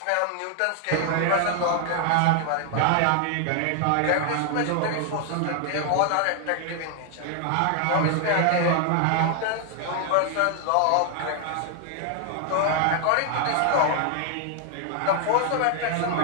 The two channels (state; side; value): different; both; correlation 0.00